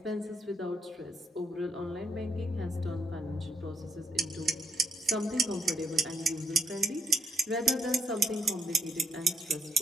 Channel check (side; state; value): both; normal; correlation 0.77